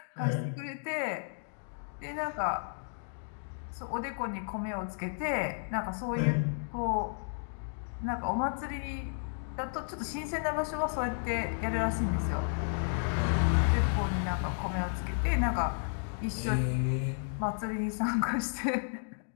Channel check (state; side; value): silent; right; digital silence